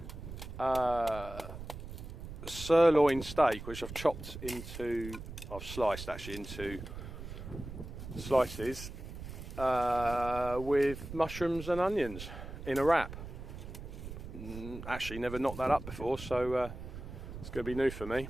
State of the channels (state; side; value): noise; right; rumble, 10 dB below the sound